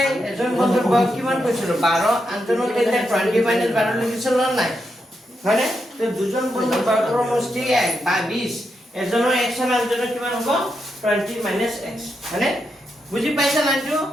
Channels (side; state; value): both; normal; correlation 0.84